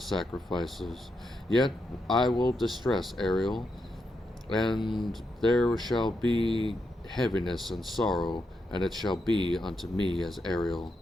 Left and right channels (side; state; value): both; normal; correlation 0.84